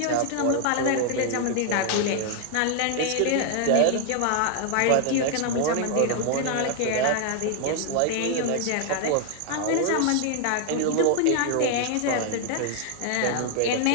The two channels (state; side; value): different; both; correlation 0.00